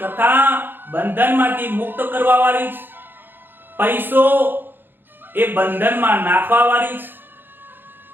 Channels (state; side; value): late; left; 0.098 ms